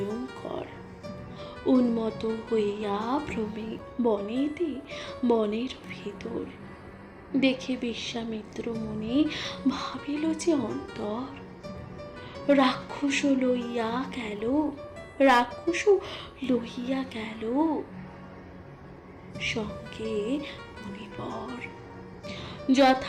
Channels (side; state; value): both; identical; correlation 1.00